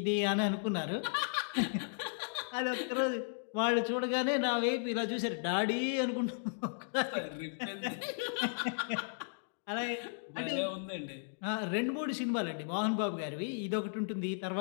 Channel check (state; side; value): silent; right; digital silence